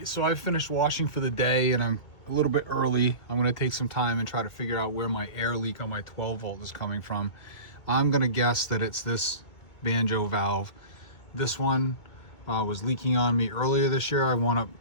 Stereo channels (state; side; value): late; right; 2.4 ms